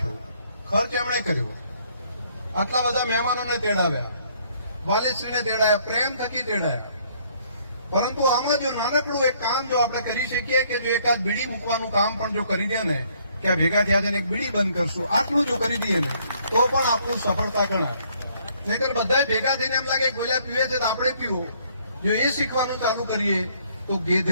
ખર્ચ એમણે કર્યો, આટલા બધા મહેમાનોને તેડાવ્યા, વાલીશ્રીને તેડાયા, પ્રેમ થકી તેડાયા. પરંતુ આમાં જો નાનકડું એક કામ જો આપણે કરી શકીએ કે જો એકાદ બીડી મૂકવાનું કામ પણ જો કરી દે ને કે આ ભેગા થયા છે ને એક બીડી બંધ કરશું, આટલું જો કરી દઈએ ને તો પણ આપણું સફળતા ગણાય. નહીતર બધા ભેગા થઈને એમ લાગે ગોળિયા પીવે છે તો આપણે પીવું. જો એ શીખવાનું ચાલુ કરીએ તો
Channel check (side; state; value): both; inverted; correlation -0.65